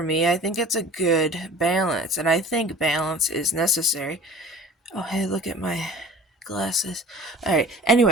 me. I think it's a good balance, and I think balance is necessary. Oh, hey, look at my glasses. Alright,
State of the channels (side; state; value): both; normal; correlation 0.43